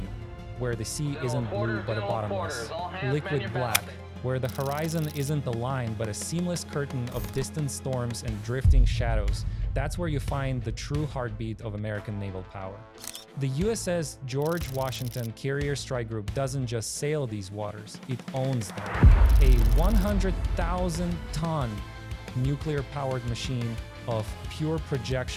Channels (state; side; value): identical; both; correlation 1.00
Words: where the sea isn't blue but a bottomless, liquid black, where the horizon isn't a line but a seamless curtain of distant storms and drifting shadows, that's where you find the true heartbeat of American naval power. The USS George Washington Carrier Strike Group doesn't just sail these waters, it owns them. A 100,000-ton nuclear-powered machine of pure